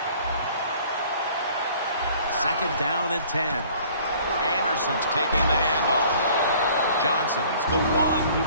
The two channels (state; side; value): inverted; both; correlation -0.53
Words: Second down and 10. Anderson's taking the handoff. Johnson's the one who